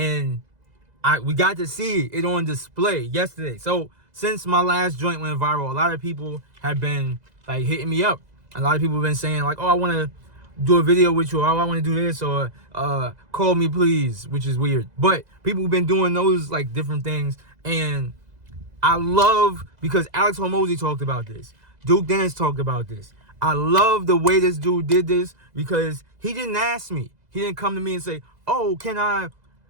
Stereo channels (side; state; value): left; late; 2.0 ms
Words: we got to see it on display yesterday. So since my last joint went viral, a lot of people have been like hitting me up. A lot of people have been saying like, oh, I want to do a video with you, or oh, I want to do this, or call me please, which is weird. But people have been doing those like different things. And I love, because Alex Hormozi talked about this. Duke Dennis talked about this. I love the way this dude did this because he didn't ask me. He didn't come to me and say, oh, can I